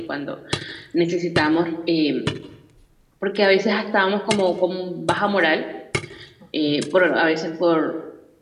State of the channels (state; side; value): identical; both; correlation 1.00